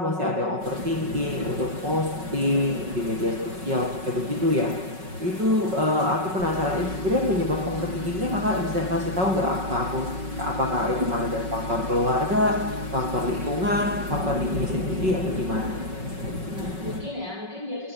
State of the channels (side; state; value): left; late; 5.4 ms